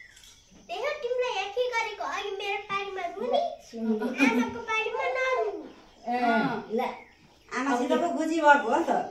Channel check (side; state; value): both; identical; correlation 1.00